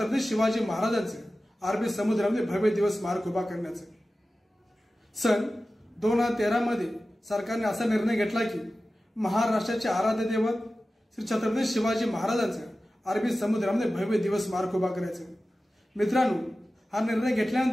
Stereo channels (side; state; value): both; normal; correlation 0.95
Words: शिवाजी महाराजांचे अरबी समुद्रामध्ये भव्य दिवस स्मारक उभा करण्याचे। सन 2013 मध्ये सरकारने असा निर्णय घेतला की महाराष्ट्राचे आराध्य दैवत श्री छत्रपती शिवाजी महाराजांचे अरबी समुद्रामध्ये भव्य दिवस स्मारक उभा करायचे। मित्रांनो, हा निर्णय